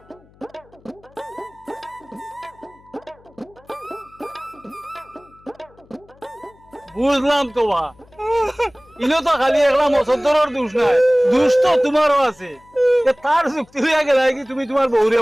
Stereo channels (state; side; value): noise; left; hum, 29 dB below the sound